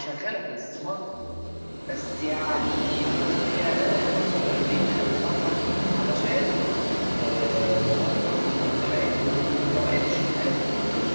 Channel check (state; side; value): inverted; both; correlation -1.00